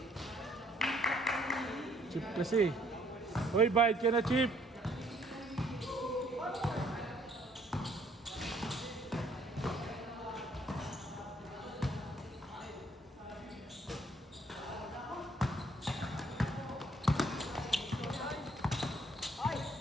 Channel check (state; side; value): normal; both; correlation 0.64